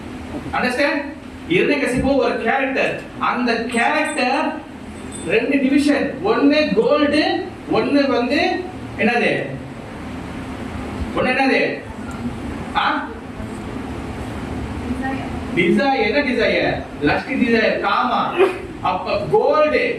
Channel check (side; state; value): both; identical; correlation 1.00